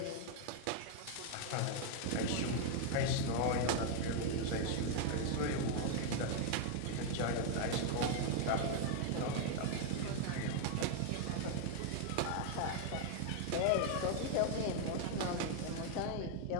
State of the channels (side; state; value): both; different; correlation 0.00